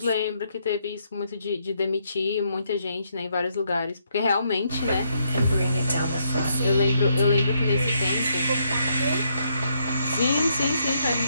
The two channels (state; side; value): inverted; both; correlation -0.75